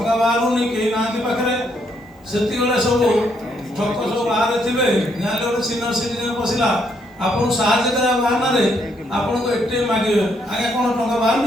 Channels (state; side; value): normal; both; correlation 0.74